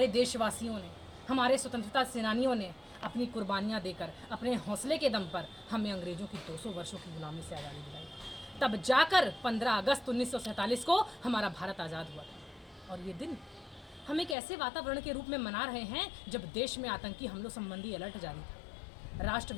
देशवासियों ने, हमारे स्वतंत्रता सेनानियों ने अपनी कुर्बानियाँ देकर अपने हौसले के दम पर हमें अंग्रेज़ों की 200 वर्षों की गुलामी से आज़ादी दिलाई। तब जाकर 15 अगस्त 1947 को हमारा भारत आज़ाद हुआ था। और ये दिन हम एक ऐसे वातावरण के रूप में मना रहे हैं जब देश में आतंकी हमलों संबंधी अलर्ट जारी था। राष्ट्र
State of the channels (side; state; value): right; drops out; at 14.4 s